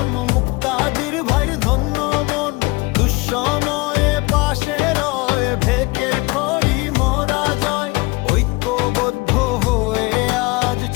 মুক্তাদির ভাইয়ের ধন্য মন। দুঃসময়ে পাশে রয়, ভেকের খড়ি মোরা জয়। ঐক্যবদ্ধ হয়ে আজ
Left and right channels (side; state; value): right; quieter; 24.3 dB